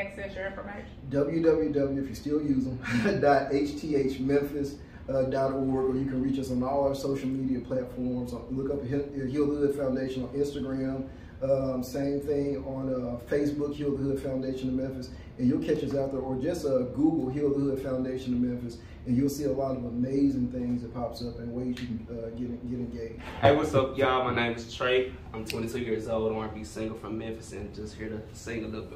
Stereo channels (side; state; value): both; identical; correlation 1.00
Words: your information? www, if you still use them, .hthmemphis. or you can reach us on all our social media platforms. Look up Heal the Hood Foundation on Instagram. Same thing on Facebook, Heal the Hood Foundation of Memphis, and you'll catch us out there. Or just Google Heal the Hood Foundation of Memphis, and you'll see a lot of amazing things that pops up and ways you can get engaged. Hey, what's up, y'all? My name is Trey. I'm 22 years old, R&B singer from Memphis, and just here to sing a little